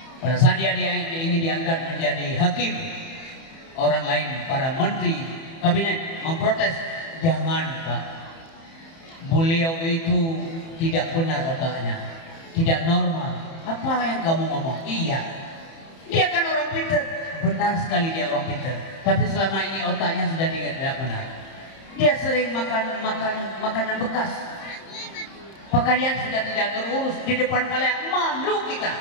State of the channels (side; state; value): right; late; 30 ms